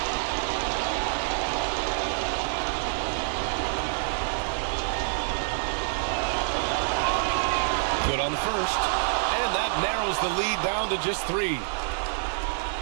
Good on the first, and that narrows the lead down to just three.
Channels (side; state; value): left; silent; 60 dB below the other